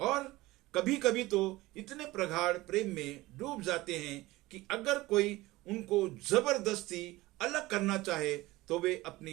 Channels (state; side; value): quieter; left; 19.1 dB